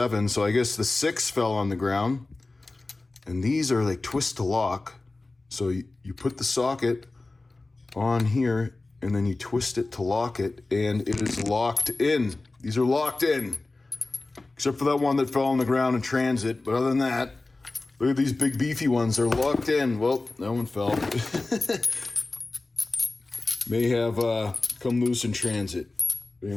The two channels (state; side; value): quieter; right; 3.2 dB